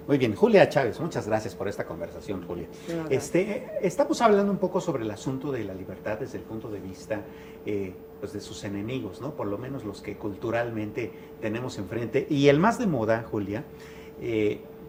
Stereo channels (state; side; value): identical; both; correlation 1.00